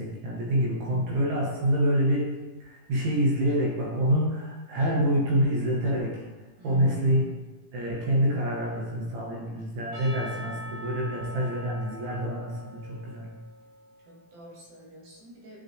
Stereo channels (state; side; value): late; left; 18 ms